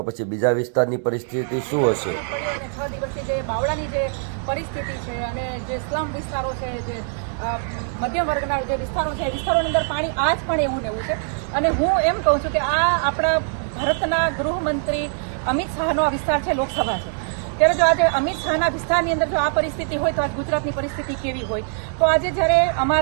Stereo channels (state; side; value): silent; left; digital silence